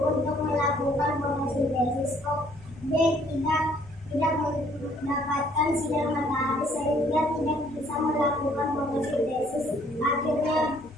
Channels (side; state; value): both; normal; correlation 0.62